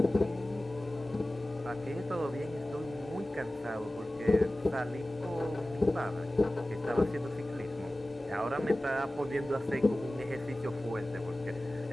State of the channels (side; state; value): both; normal; correlation 0.97